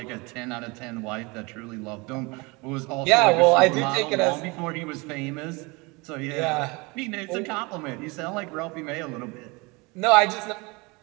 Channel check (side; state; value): left; quieter; 26.5 dB